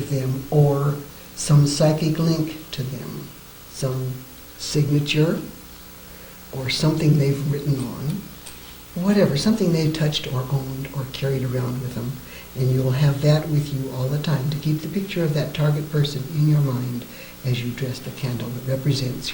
them or some psychic link to them, some signature or something they've written on, whatever, something they've touched or owned or carried around with them, and you'll have that with you all the time to keep the picture of that target person in your mind as you dress the candle that represents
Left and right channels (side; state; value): both; identical; correlation 1.00